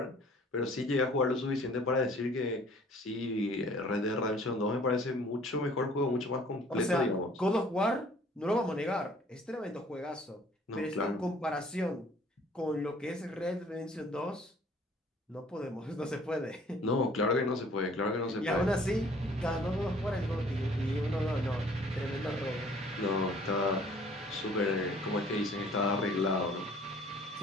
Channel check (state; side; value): normal; both; correlation 0.55